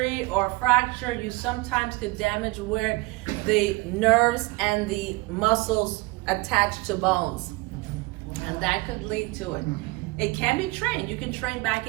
or fracture, you sometimes could damage where the nerves and the muscles attach to bones. And that could lead to it. It can be trained. You can train back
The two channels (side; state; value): left; quieter; 23.7 dB